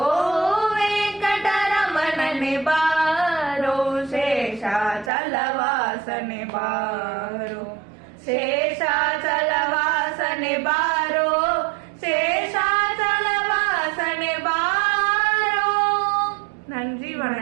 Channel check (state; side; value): drops out; left; at 5.1 s